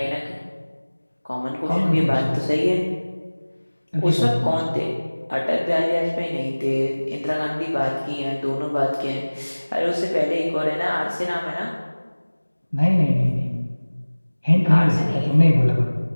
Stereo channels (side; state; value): both; inverted; correlation -1.00